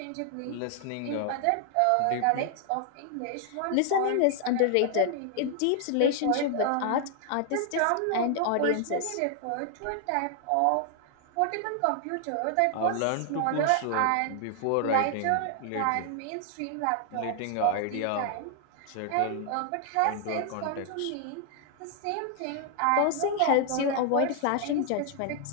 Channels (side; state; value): both; different; correlation 0.00